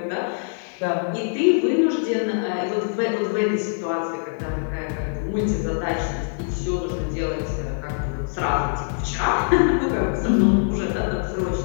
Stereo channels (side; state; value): right; silent; digital silence